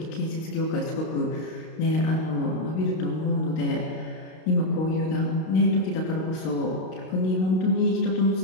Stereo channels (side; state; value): right; late; 32 ms